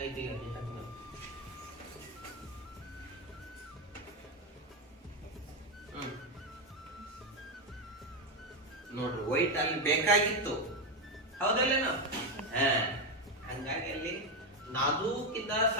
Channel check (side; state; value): both; normal; correlation 0.08